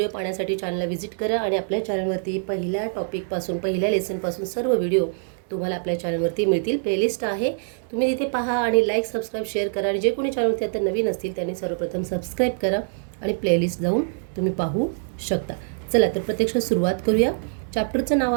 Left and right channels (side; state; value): left; silent; digital silence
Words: पाहण्यासाठी चॅनलला व्हिजिट करा आणि आपल्या चॅनलवरती पहिल्या टॉपिकपासून पहिल्या लेसनपासून सर्व व्हिडिओ तुम्हाला आपल्या चॅनलवरती मिळतील. प्लेलिस्ट आहे, तुम्ही तिथे पहा आणि लाईक सबस्क्राईब शेअर करा. आणि जे कोणी चॅनलवरती आता नवीन असतील त्यांनी सर्वप्रथम सबस्क्राईब करा आणि प्लेलिस्ट जाऊन तुम्ही पाहू शकता. चला तर प्रत्यक्षात सुरुवात करूया. चॅप्टरचं नाव